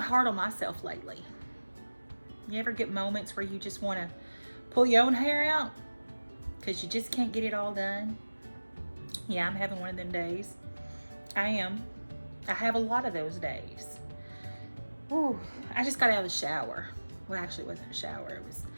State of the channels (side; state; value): both; inverted; correlation -1.00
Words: hard on myself lately. You ever get moments where you just want to pull your own hair out because you just can't get it all done? Yeah, I'm having one of them days. I am. I have a lot of those days. Ooh, I just got out of the shower. Well, actually, it wasn't a shower. It's